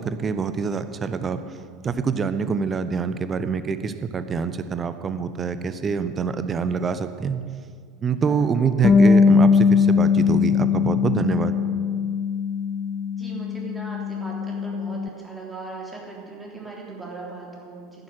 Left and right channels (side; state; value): both; normal; correlation 0.64